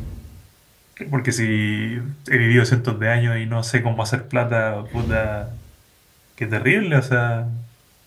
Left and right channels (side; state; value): both; identical; correlation 1.00